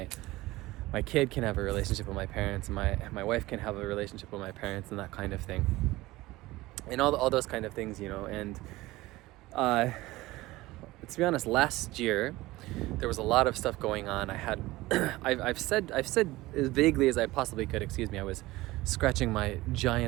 kid can have a relationship with my parents, and my wife can have a relationship with my parents, and that kind of thing. And all those kind of things, you know. And to be honest, last year there was a lot of stuff going on. I had I've said as vaguely as I possibly could, excuse me, I was scratching my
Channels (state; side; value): quieter; left; 18.9 dB